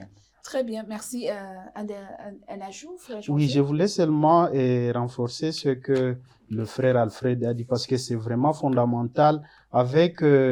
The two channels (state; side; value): identical; both; correlation 1.00